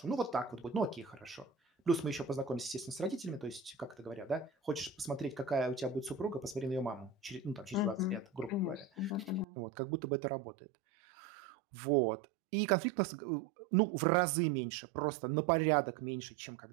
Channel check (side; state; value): left; drops out; at 9.5 s